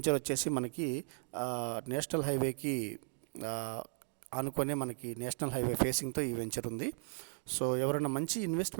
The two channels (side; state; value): left; silent; digital silence